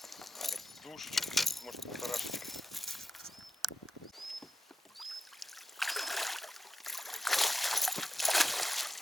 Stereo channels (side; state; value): both; normal; correlation 0.92